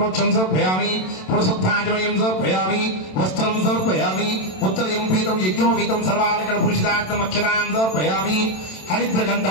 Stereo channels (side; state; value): right; late; 27 ms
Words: సమర్పయామి పురుషుద్ధాచమనీయం సమర్పయామి వస్త్రం సమర్పయామి ఉత్తరయం పీతం యజ్ఞోపీతం సర్వాలంకర భూషితార్థం అక్షరాం సమర్పయామి హరిద్ర